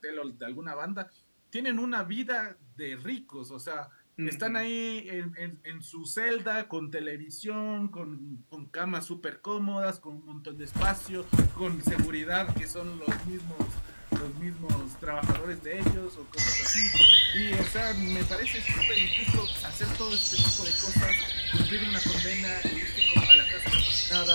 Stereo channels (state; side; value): inverted; both; correlation -1.00